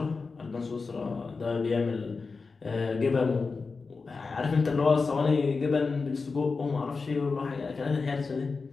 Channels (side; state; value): right; quieter; 4.4 dB